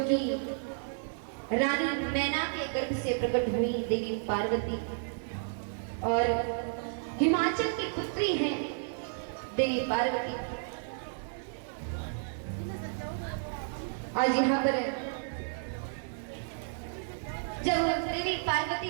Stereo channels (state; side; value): silent; left; digital silence